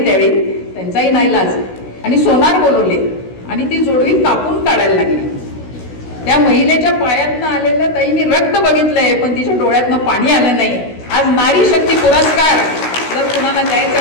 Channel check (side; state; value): right; late; 16 ms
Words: त्यावेळी, त्यांचाही नाईलाज, आणि सोनार बोलवले आणि ती जोडवी कापून काढायला लागली. त्या महिलेच्या पायातनं आलेलं ताई मी रक्त बघितलंय, पण तिच्या डोळ्यातनं पाणी आलं नाही. आज नारी शक्ती पुरस्कार जर कुणाला द्यायचा